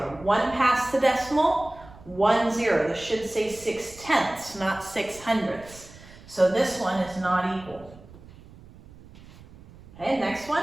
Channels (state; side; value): noise; right; rumble, 21 dB below the sound